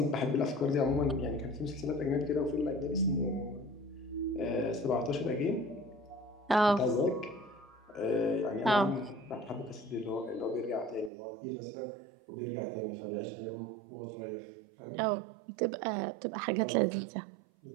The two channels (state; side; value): drops out; left; at 11.1 s